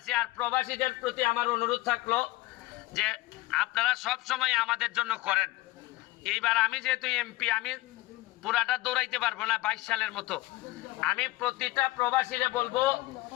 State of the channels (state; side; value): quieter; right; 18.9 dB